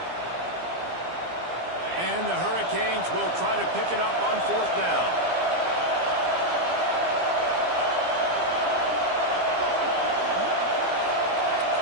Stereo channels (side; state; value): left; late; 17 ms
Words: And the Hurricanes will try to pick it up on fourth down.